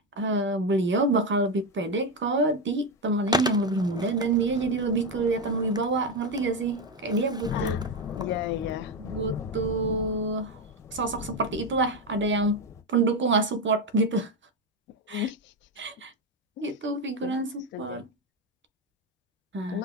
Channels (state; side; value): normal; both; correlation 0.11